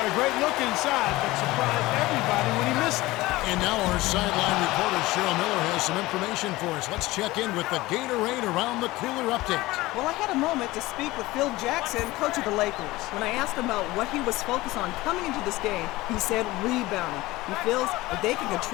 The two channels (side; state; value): right; quieter; 19.1 dB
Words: a great look inside, but surprised everybody when he missed it. And now our sideline reporter, Cheryl Miller, has some information for us. Let's check in with the Gatorade Around the Cooler update. Well, I had a moment to speak with Phil Jackson, coach of the Lakers. When I asked him about what he was focused on coming into this game, he said rebounding. He feels if they can